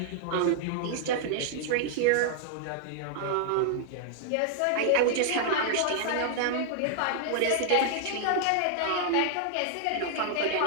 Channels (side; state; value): both; different; correlation -0.01